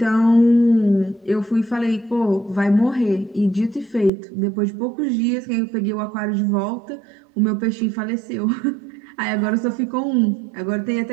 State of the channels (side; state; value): left; drops out; at 4.1 s